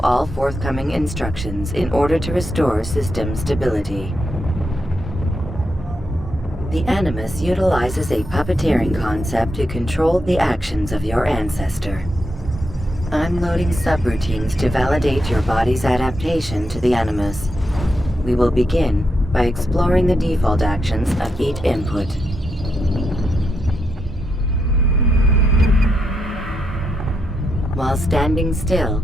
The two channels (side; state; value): both; normal; correlation 0.82